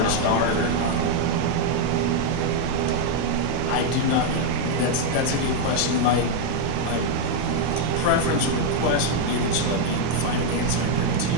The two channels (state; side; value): different; both; correlation 0.01